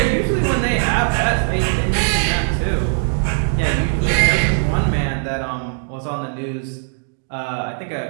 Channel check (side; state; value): left; silent; 60 dB below the other